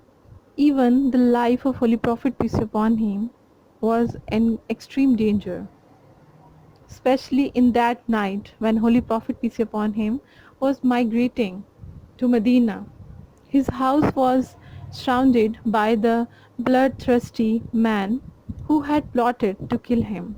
even the life of Holy Prophet peace be upon him was in extreme danger, especially in that night when Holy Prophet peace be upon him was migrating to Medina. His house was surrounded by the bloodthirsty men who had plotted to kill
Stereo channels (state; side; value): identical; both; correlation 1.00